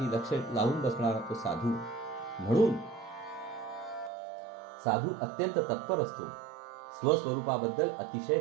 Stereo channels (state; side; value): drops out; left; at 4.1 s